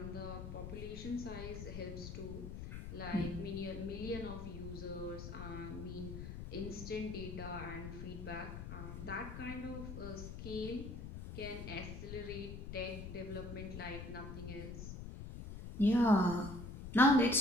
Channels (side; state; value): left; noise; rumble, 8 dB below the sound